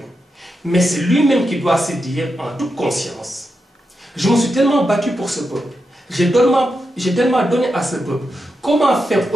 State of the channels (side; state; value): both; normal; correlation 0.87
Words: Mais c'est lui-même qui doit se dire, en toute conscience, je me suis tellement battu pour ce peuple. J'ai tellement donné à ce peuple. Comment faire